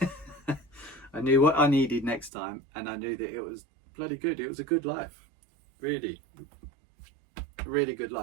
I knew what I needed next time, and I knew that it was bloody good. It was a good life. Really good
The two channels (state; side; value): drops out; left; at 2.3 s